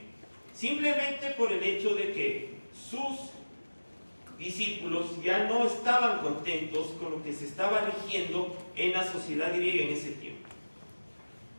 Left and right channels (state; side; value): inverted; both; correlation -1.00